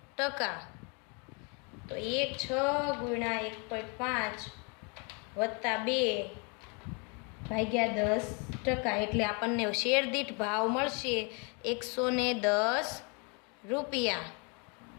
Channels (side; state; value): right; quieter; 33.9 dB